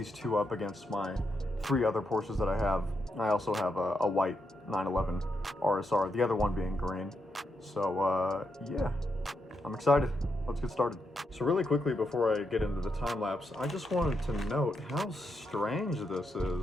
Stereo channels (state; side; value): normal; both; correlation 0.82